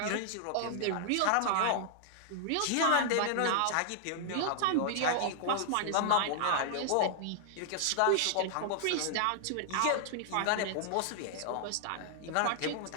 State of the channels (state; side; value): different; both; correlation -0.01